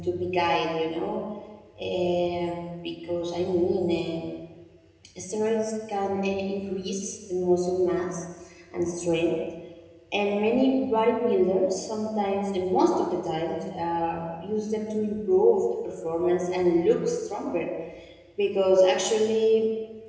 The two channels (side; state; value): both; identical; correlation 1.00